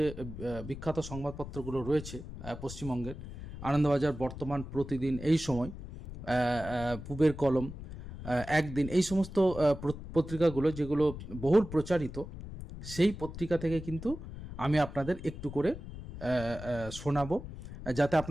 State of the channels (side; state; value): left; noise; rumble, 11 dB below the sound